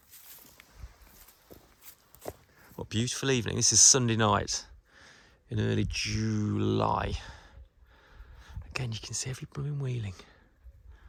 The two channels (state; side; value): identical; both; correlation 1.00